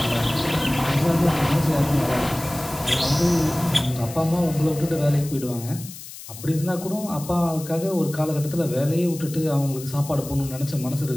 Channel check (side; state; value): left; noise; hiss, 14 dB below the sound